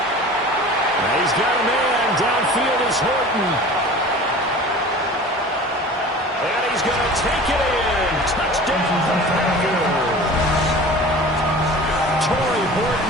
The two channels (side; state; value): both; normal; correlation 0.40